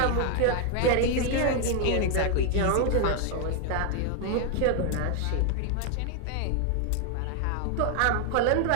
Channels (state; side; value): different; both; correlation 0.00